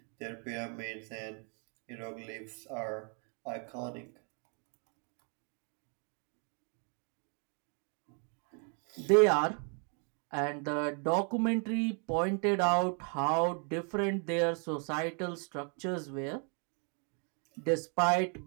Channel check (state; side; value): quieter; left; 39.5 dB